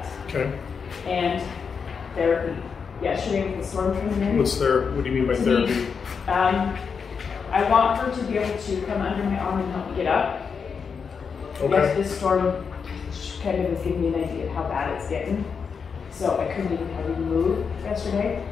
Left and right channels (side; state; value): right; quieter; 5.9 dB